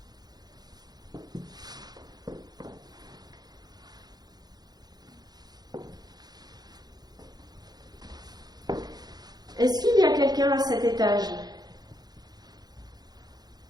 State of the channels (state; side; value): late; left; 0.19 ms